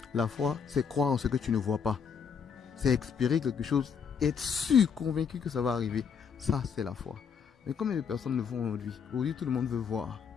La foi, c'est croire en ce que tu ne vois pas. C'est espérer quelque chose, être sûr, convaincu que ça va arriver. Ça, c'est la foi. Mais combien de personnes le font aujourd'hui? Aujourd'hui, tout le monde veut voir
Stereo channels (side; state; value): right; quieter; 6.7 dB